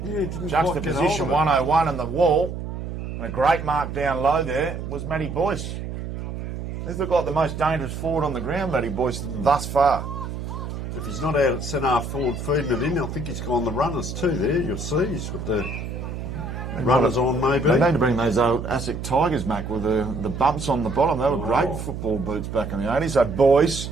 Juxtaposition 101 on the wall. And a great mark down low there was Matty Boyce. These look like the most dangerous forward on the ground, Matty Boyce, thus far. If he's not out at centre forward feeding it in, I think he's gone the runners too there. You'll see he's got the runners on maybe. They need to bring those old ASIC Tigers back with the bumps on the bottom. They were great football boots back in the 80s. So Boyce,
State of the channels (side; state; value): right; noise; hum, 7 dB below the sound